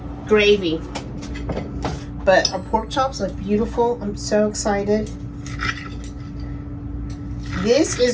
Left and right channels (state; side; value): identical; both; correlation 1.00